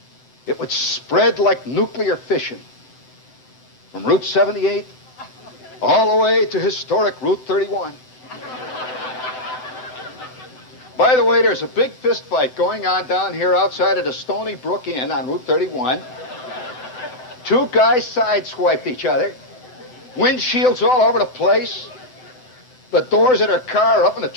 It would spread like nuclear fission from Route 78 all the way to historic Route 31. By the way, there's a big fist fight going on down here outside of the Stony Brook Inn on Route 31. Two guys sideswiped each other. Windshields all over the place. The doors of their car are up in the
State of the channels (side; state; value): right; late; 7.9 ms